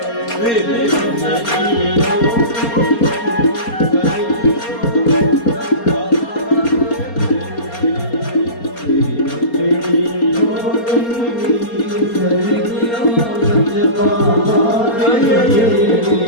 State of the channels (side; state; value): right; late; 4.3 ms